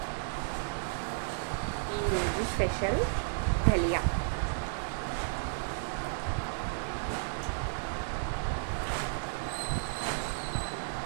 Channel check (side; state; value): left; silent; digital silence